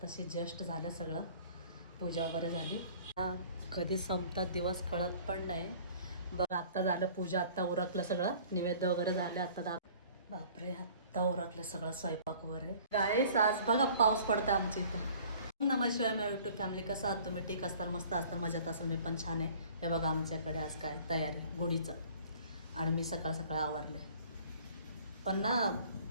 just झालं सगळं, पूजा वगैरे झाली. कधी संपतात दिवस कळत पण नाही. बघ आत्ता झालं पूजा, आत्ता उरकलं सगळं, निवेद्य वगैरे झाले. आता बापरे, आत्ता उरकलं सगळं स्वयंपाक वगैरे. गाईस आज बघा पाऊस पडतं आमच्या इथं. नमस्कार माझ्या यूट्यूब फॅमिली, कसं आहात तुम्ही? ठीक असताल, मस्त असताल, मजेत असाल, मी पण छान आहे. हे बघा आमच्याकडे आज काय तयारी गुढीचं, आणि मी सकाळ सकाळ आवरले. पण ना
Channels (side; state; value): both; inverted; correlation -0.51